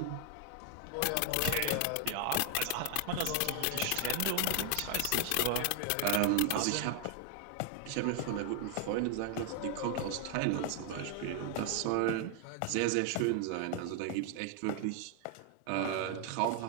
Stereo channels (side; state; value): both; different; correlation 0.00